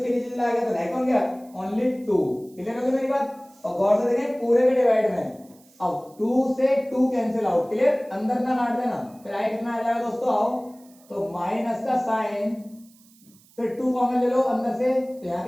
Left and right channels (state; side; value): noise; right; hiss, 28 dB below the sound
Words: नीचे चला गया तो रह कौन गया ओनली 2। क्लियर हो गई मेरी बात। और गौर से देखें पूरे के डिवाइड में अब 2 से 2 कैंसिल आउट। क्लियर, अंदर ना काट देना। फिर आए कितना आ जाएगा दोस्तों, आओ तो माइनस का साइन फिर 2 कॉमन ले लो अंदर से तो यहाँ